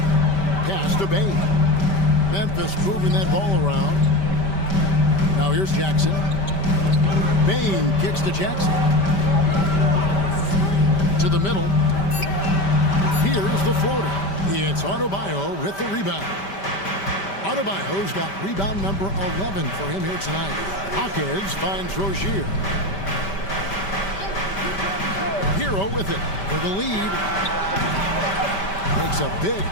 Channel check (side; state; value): right; late; 5.1 ms